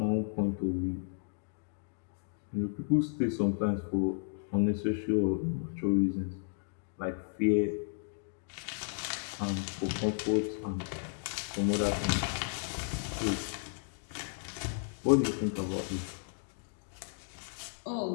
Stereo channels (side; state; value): right; silent; digital silence